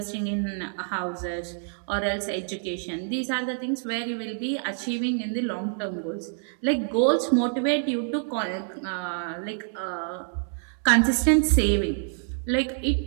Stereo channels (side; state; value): left; silent; digital silence